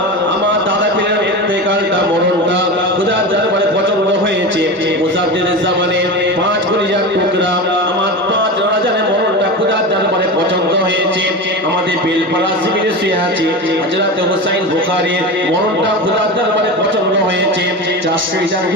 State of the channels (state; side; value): normal; both; correlation 0.25